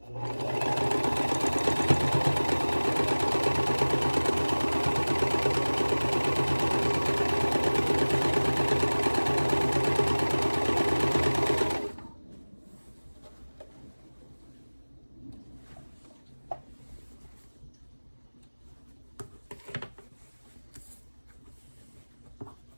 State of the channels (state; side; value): inverted; both; correlation -1.00